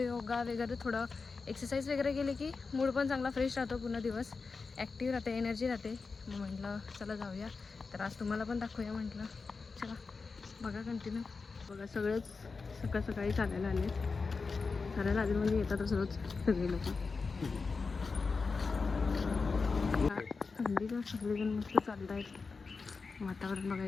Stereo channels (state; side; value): quieter; right; 4.5 dB